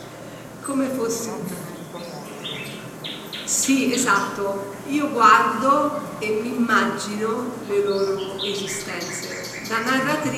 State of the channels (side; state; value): both; identical; correlation 1.00